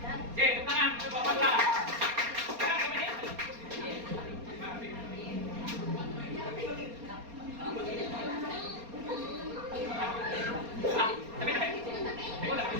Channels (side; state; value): left; late; 4.3 ms